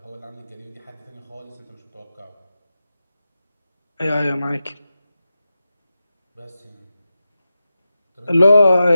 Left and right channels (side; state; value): both; inverted; correlation -0.92